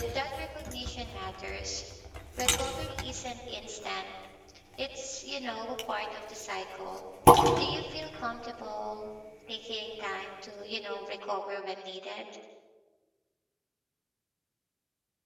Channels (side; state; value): both; identical; correlation 1.00